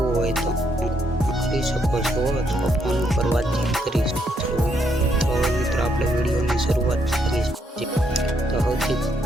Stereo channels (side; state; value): both; normal; correlation 0.74